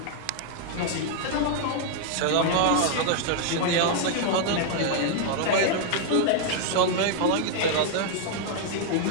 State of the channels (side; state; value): both; different; correlation 0.00